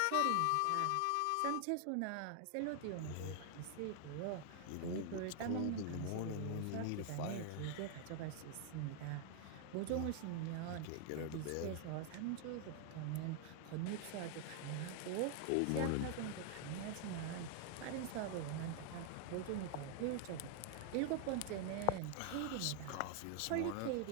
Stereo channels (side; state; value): both; different; correlation 0.00